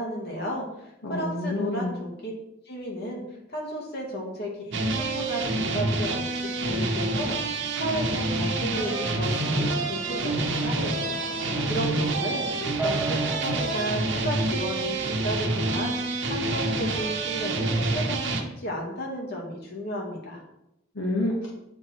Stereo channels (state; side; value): normal; both; correlation 0.40